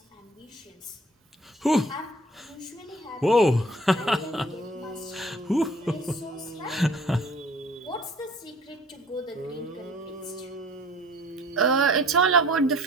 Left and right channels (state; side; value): normal; both; correlation 0.52